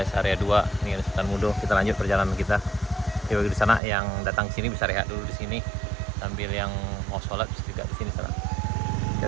area 2. Ini ada Sultan Mudo. Kita lanjut perjalanan kita. Di sana yang datang sini bisa rehat dulu di sini sambil yang mau sholat bisa juga di sini sana. Ya,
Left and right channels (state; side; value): drops out; left; at 3.8 s